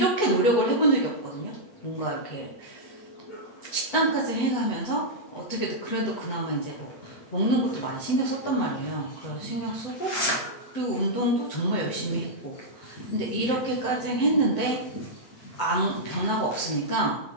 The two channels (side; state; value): right; late; 8.6 ms